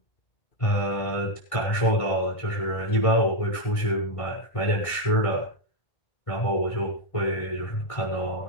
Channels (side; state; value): right; late; 1.6 ms